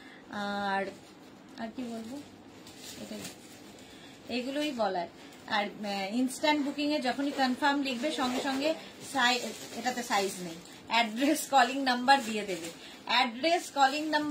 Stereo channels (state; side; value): identical; both; correlation 1.00